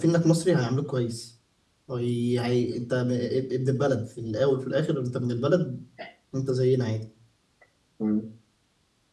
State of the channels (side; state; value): both; identical; correlation 1.00